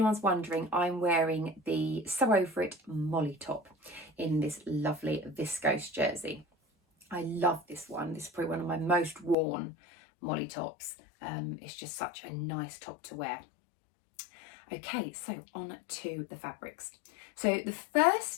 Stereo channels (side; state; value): right; drops out; at 9.3 s